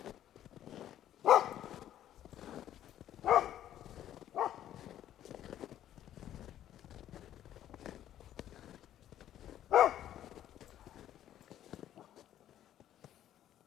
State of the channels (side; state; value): right; quieter; 11.7 dB